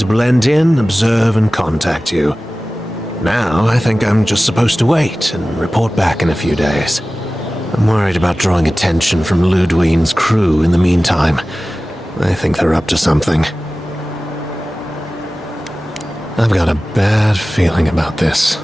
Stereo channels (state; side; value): normal; both; correlation 0.96